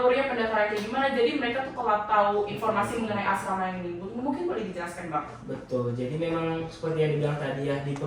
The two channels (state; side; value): identical; both; correlation 1.00